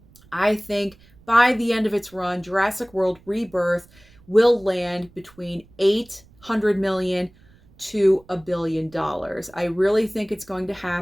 I think by the end of its run, Jurassic World Rebirth will land between 800 million to $1 billion. I really think it's going to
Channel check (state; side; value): noise; right; rumble, 28 dB below the sound